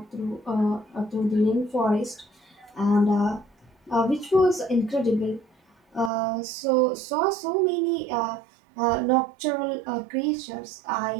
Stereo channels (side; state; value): left; drops out; at 6.1 s